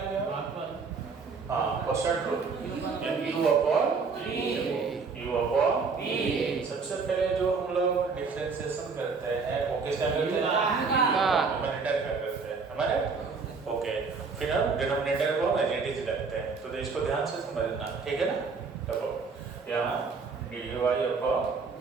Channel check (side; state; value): left; quieter; 4.8 dB